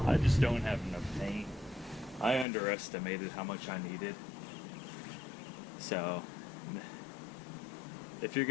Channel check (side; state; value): right; drops out; at 2.5 s